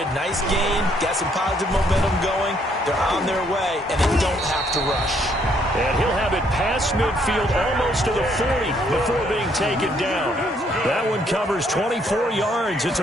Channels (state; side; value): normal; both; correlation 0.69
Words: nice gain, got some positive momentum going. They're on their way, and they don't have to rush. And he'll have it past midfield almost to the 40 before being taken down. That one covers 24 yards. It's